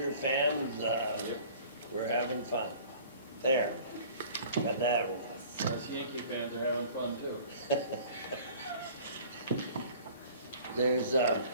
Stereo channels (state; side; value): inverted; both; correlation -0.47